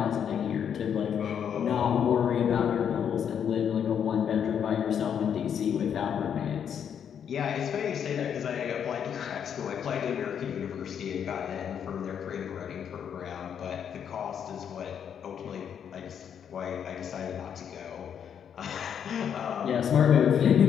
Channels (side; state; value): right; quieter; 8.3 dB